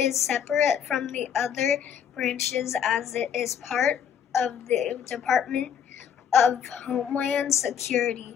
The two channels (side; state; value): right; quieter; 8.3 dB